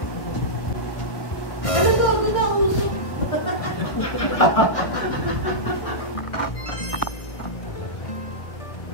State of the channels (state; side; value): late; right; 1.6 ms